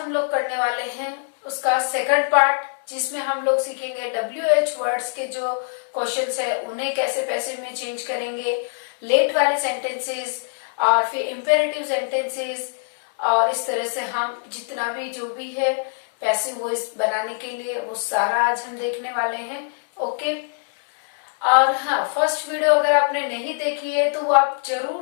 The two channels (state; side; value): silent; right; 63 dB below the other